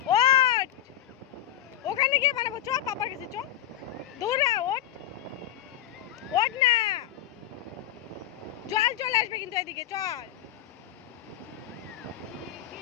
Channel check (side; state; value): right; quieter; 12.0 dB